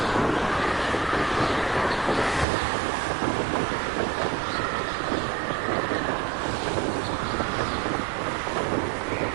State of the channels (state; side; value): drops out; left; at 2.5 s